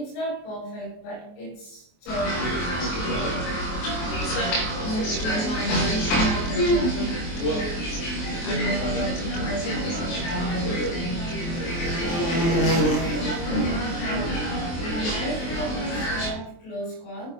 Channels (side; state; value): right; late; 23 ms